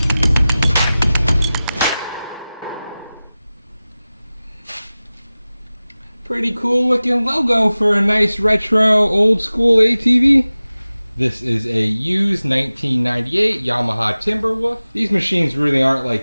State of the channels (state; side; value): inverted; both; correlation -0.97